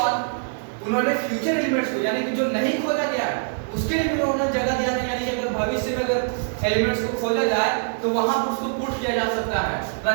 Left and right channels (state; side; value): silent; left; digital silence